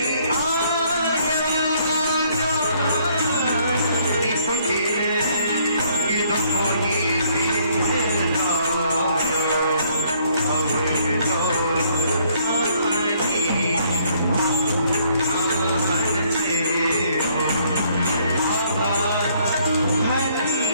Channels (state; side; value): inverted; both; correlation -0.66